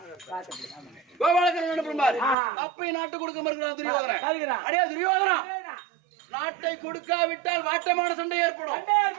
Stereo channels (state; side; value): drops out; left; at 2.4 s